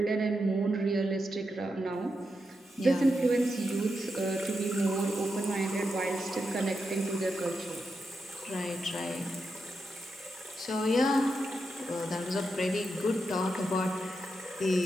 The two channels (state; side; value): normal; both; correlation 0.86